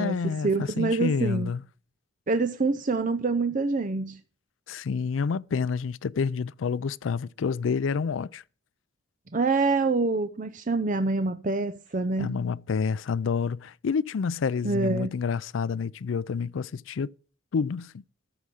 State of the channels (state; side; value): normal; both; correlation 0.40